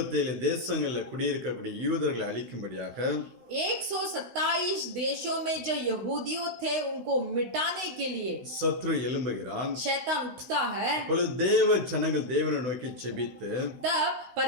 தேசங்களில் குடியிருக்கக்கூடிய யூதர்களை அழிக்கும்படியாக 127 देशों में जो यहूदियों थे उनको मिटाने के लिए சத்ரு எழும்புகிறான். शैतान उठता है। அப்பொழுது தேவ ஜனங்கள் தேவனை நோக்கி ஜெபித்து तब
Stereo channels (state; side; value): late; left; 16 ms